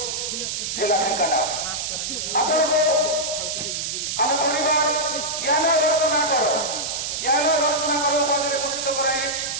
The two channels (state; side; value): noise; right; hiss, 3 dB below the sound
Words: ଜିଲ୍ଲା ଢେଙ୍କାନାଳ ଆପଣଙ୍କୁ ଆମ ପରିବାର ଜ୍ଞାନ ରତ୍ନାକର ଉପାଧିରେ ଭୂଷିତ କରାଇ